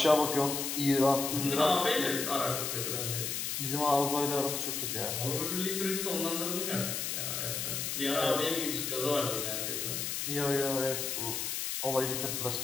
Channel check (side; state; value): left; noise; hiss, 2 dB below the sound